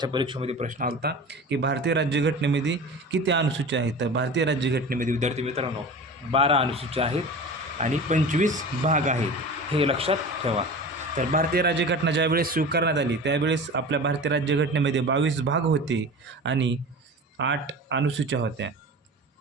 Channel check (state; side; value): normal; both; correlation 0.34